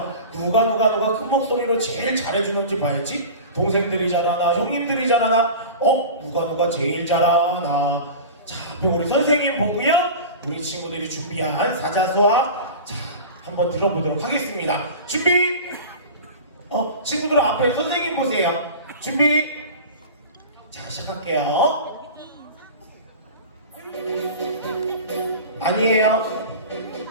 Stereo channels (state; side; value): inverted; both; correlation -0.33